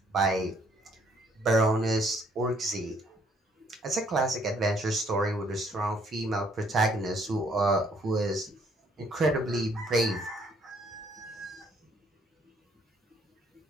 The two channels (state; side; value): normal; both; correlation 0.65